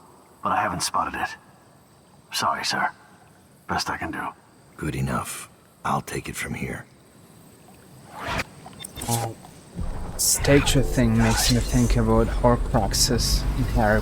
but I haven't spotted it. Sorry, sir. Best I can do. Good enough. I'll take it from here. Statue thing makes me think about Horcruxes in Harry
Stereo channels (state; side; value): identical; both; correlation 1.00